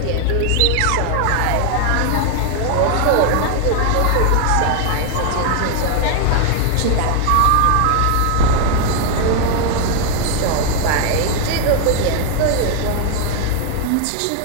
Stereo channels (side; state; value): both; different; correlation 0.00